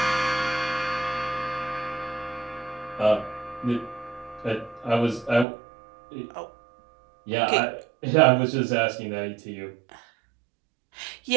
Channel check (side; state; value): left; drops out; at 5.5 s